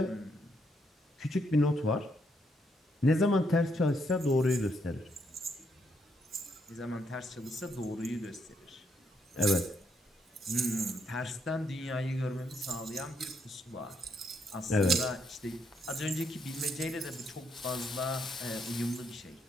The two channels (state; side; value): normal; both; correlation 0.75